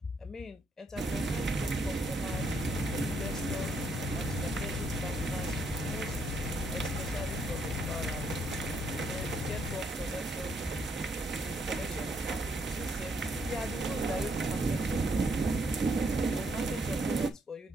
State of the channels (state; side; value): normal; both; correlation 0.74